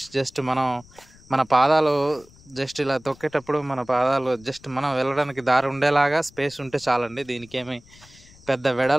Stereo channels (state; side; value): noise; left; rumble, 25 dB below the sound